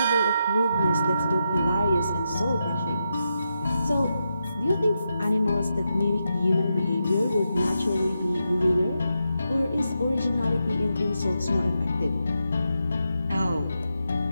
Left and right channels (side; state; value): both; inverted; correlation -0.85